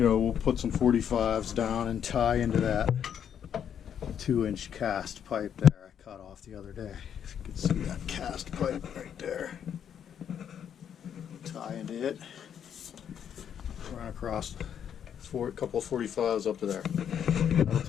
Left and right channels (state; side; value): quieter; right; 8.7 dB